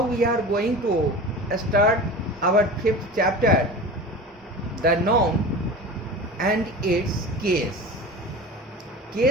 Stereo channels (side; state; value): both; normal; correlation 0.34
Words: we are going to start our fifth chapter, the noun and its case.